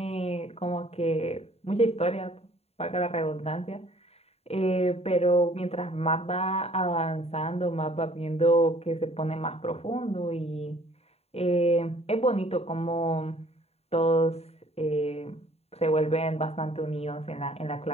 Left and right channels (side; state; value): right; late; 0.30 ms